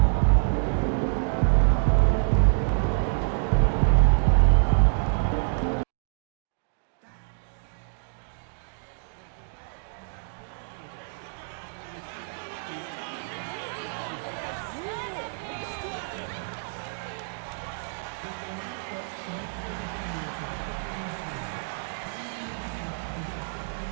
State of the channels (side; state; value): left; silent; digital silence